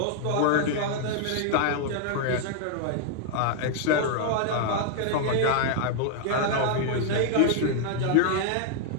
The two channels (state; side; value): different; both; correlation 0.00